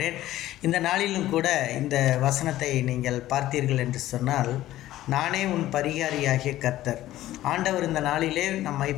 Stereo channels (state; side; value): quieter; right; 14.6 dB